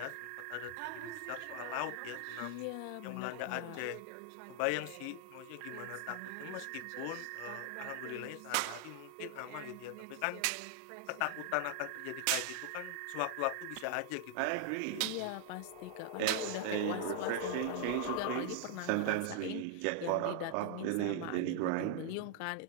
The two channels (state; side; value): different; both; correlation 0.00